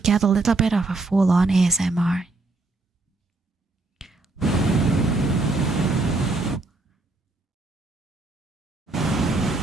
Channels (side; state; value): left; quieter; 3.2 dB